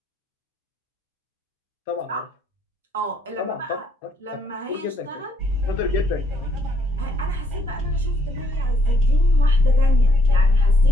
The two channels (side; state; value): both; normal; correlation 0.69